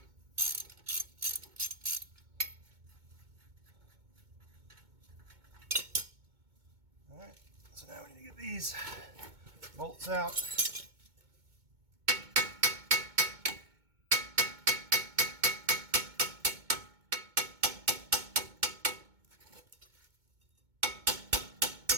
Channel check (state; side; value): late; left; 2.2 ms